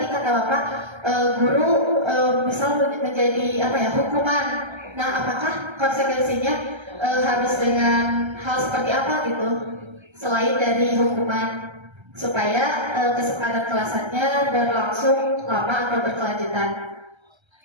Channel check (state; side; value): late; left; 1.3 ms